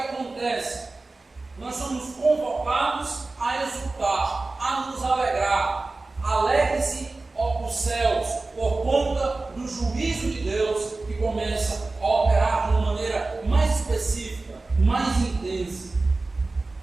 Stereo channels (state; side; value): quieter; left; 3.4 dB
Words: Nós somos convocados a exultar, a nos alegrar. Alegre-se, ó os céus, por conta do juízo de Deus que começa a operar de uma maneira mais específica, mais intensa.